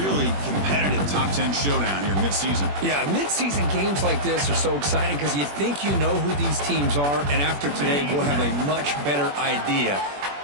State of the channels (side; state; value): left; late; 21 ms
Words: competitive top 10 showdown here mid-season. Yeah, mid-season games like this are so exciting because you think you know who these teams are, and after today we'll have a much better idea.